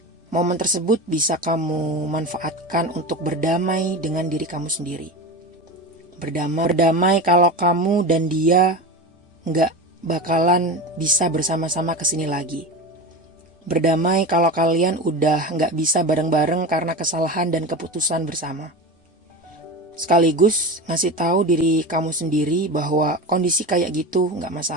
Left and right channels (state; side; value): normal; both; correlation 0.26